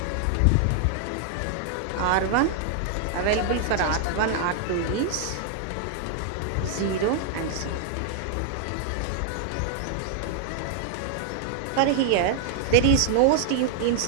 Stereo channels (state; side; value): different; both; correlation 0.00